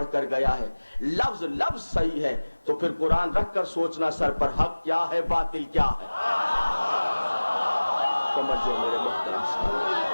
کر گیا ہے لفظ لفظ صحیح ہے، تو پھر قرآن رکھ کر سوچنا سر پر حق کیا ہے، باطل کیا ہے۔ سمجھو میرے محترم صاحب،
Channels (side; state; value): both; inverted; correlation -1.00